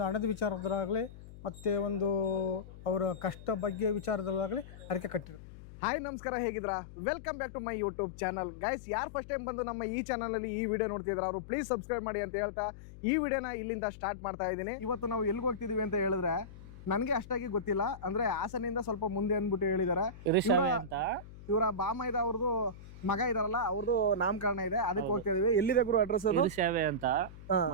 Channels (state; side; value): noise; left; hum, 16 dB below the sound